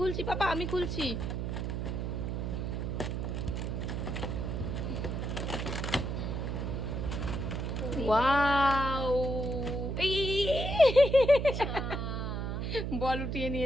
পাপা, আমি খুলছি। ওয়াও, এই বল উঠিয়ে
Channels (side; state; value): right; noise; hum, 2 dB below the sound